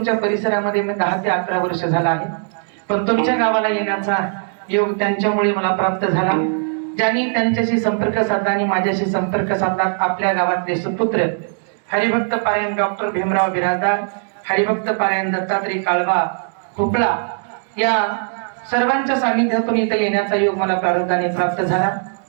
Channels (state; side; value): silent; left; 66 dB below the other